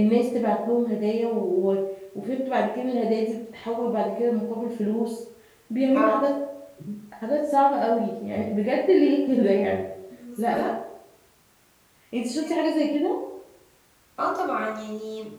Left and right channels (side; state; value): both; identical; correlation 1.00